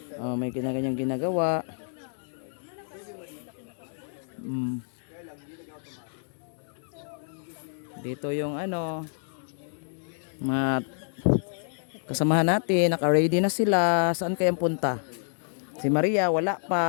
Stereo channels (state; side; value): silent; right; digital silence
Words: May kanya-kanyang ginagawa. Dito yung ano, mga kasamahan natin, naka-ready na sila. Saan kayang punta? Si Maria wala